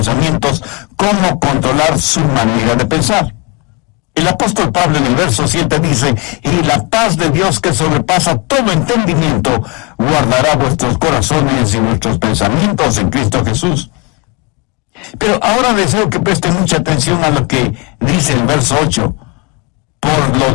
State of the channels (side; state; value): right; quieter; 27.9 dB